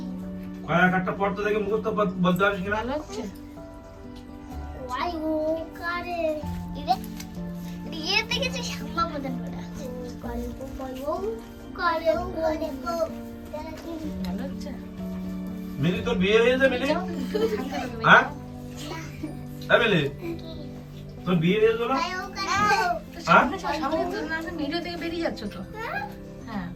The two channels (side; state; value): both; identical; correlation 1.00